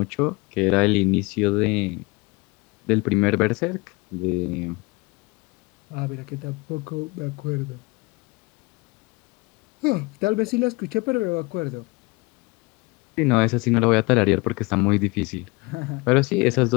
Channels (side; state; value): right; quieter; 25.9 dB